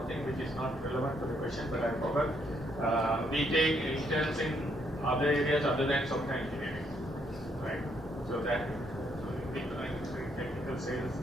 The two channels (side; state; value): both; normal; correlation 0.72